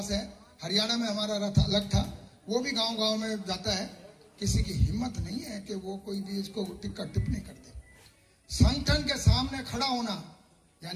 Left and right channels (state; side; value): identical; both; correlation 1.00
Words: है, हरियाणा में हमारा रथ अलग था, वो भी गांव में जाता है। किसी की हिम्मत नहीं है कि वो कोई भी इसको टिप्पणी करते। संगठन के सामने खड़ा होना,